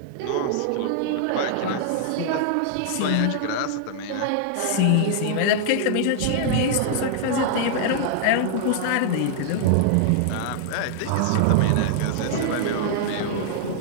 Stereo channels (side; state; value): both; different; correlation -0.01